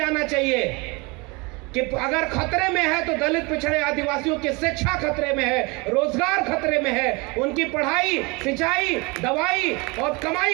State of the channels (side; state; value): left; quieter; 27.3 dB